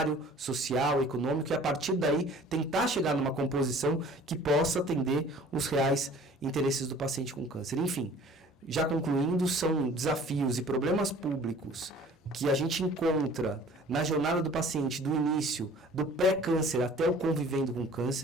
social, econômico, e a partir daí tentar chegar numa composição que possa atender os reais interesses do paciente com câncer. Enfim, já concluindo, são desafios e problemas públicos que a gente encontra na jornada do paciente, do início, do pré-câncer até o convivendo com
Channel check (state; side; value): normal; both; correlation 0.49